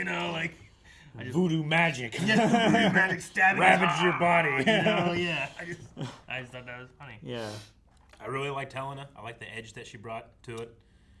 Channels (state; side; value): identical; both; correlation 1.00